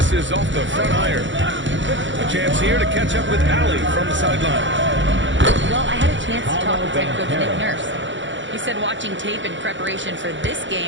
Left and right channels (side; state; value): left; late; 0.55 ms